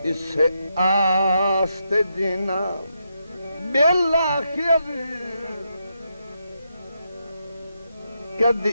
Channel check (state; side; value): inverted; both; correlation -0.82